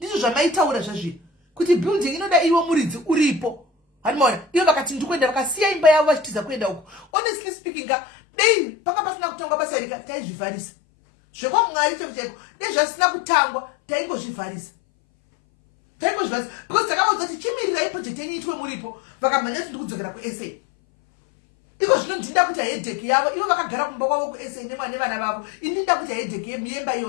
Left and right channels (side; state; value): right; drops out; at 7.1 s